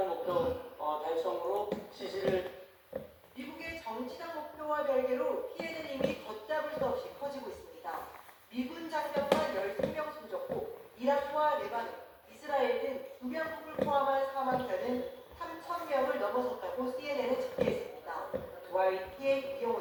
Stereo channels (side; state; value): both; identical; correlation 1.00